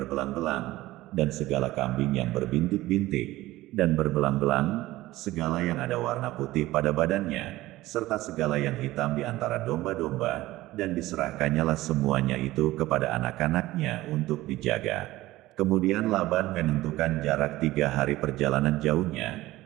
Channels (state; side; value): quieter; left; 17.2 dB